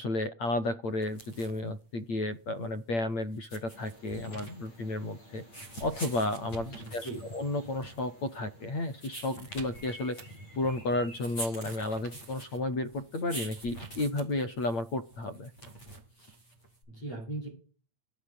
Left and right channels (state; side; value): late; right; 8.6 ms